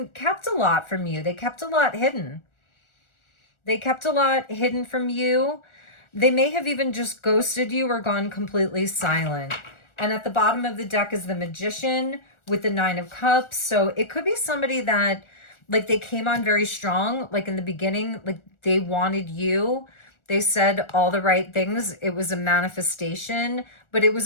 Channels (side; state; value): right; late; 1.4 ms